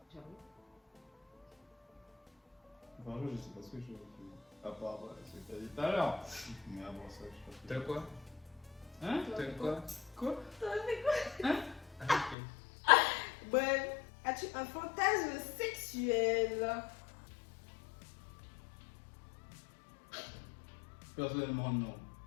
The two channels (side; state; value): right; drops out; at 12.4 s